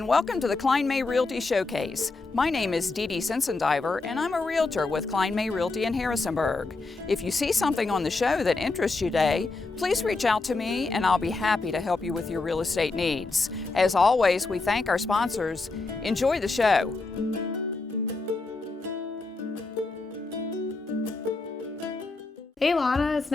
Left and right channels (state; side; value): quieter; right; 3.6 dB